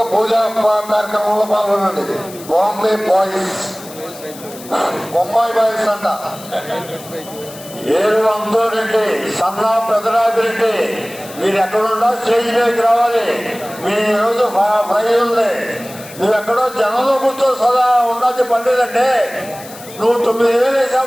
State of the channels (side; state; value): left; noise; hiss, 17 dB below the sound